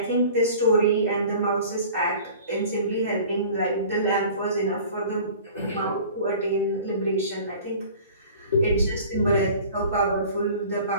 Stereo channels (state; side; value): inverted; both; correlation -0.45